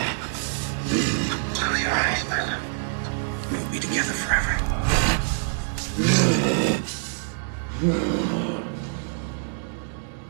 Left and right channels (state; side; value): silent; left; digital silence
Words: Close your eyes, my love. We'll be together forever.